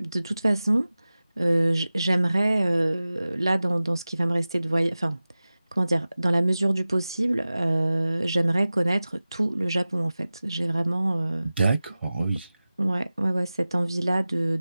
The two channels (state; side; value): inverted; both; correlation -0.96